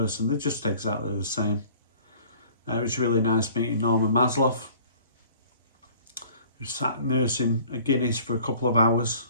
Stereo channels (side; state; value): both; inverted; correlation -0.51